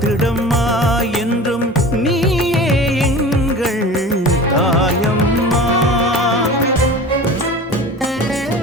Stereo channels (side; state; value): both; normal; correlation 0.37